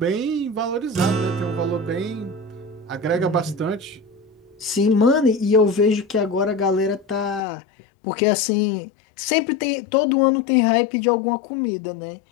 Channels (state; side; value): drops out; right; at 7.5 s